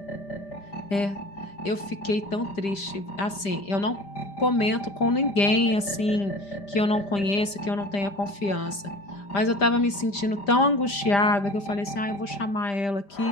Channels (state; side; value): late; right; 5.0 ms